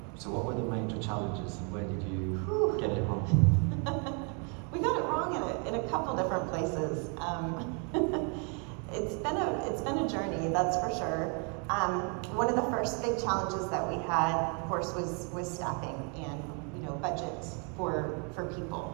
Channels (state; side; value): quieter; left; 37.0 dB